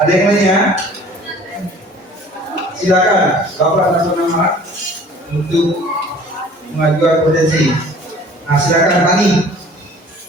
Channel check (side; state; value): both; normal; correlation 0.49